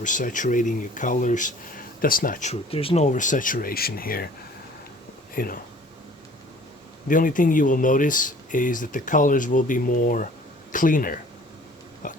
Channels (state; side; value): normal; both; correlation 0.51